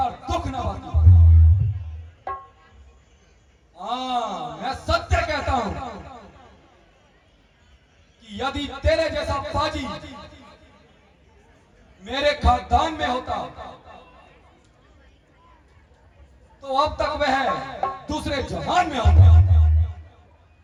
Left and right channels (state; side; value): identical; both; correlation 1.00